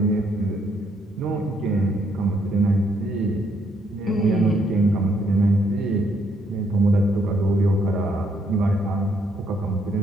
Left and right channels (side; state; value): both; normal; correlation 0.72